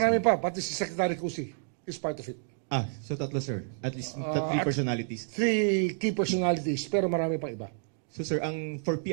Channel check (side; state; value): left; silent; digital silence